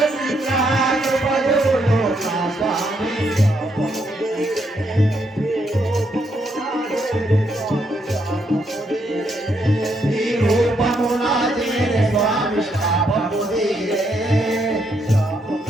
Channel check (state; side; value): normal; both; correlation 0.76